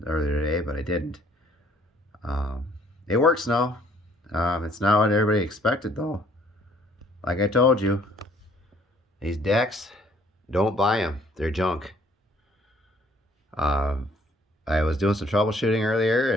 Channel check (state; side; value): normal; both; correlation 0.61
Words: earlier today, but I didn't. Um, it works now. It's not what everybody expected though. Like I told you, these decks, don't buy them. They're junk. I was doing some troubleshooting earlier